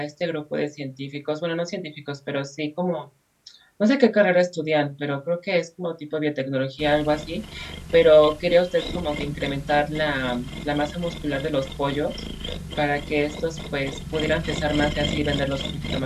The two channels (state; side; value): identical; both; correlation 1.00